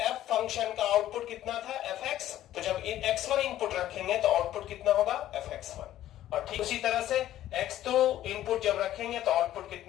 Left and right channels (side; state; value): right; quieter; 13.1 dB